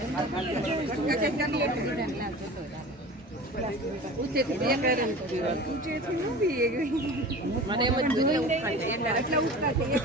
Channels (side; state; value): both; normal; correlation 0.37